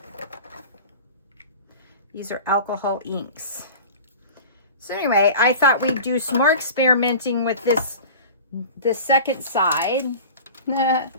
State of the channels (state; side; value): inverted; both; correlation -0.37